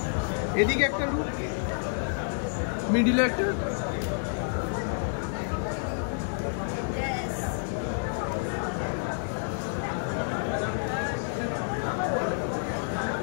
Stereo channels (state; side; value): silent; right; digital silence